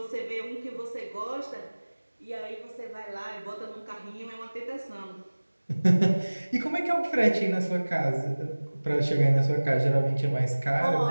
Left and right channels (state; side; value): inverted; both; correlation -1.00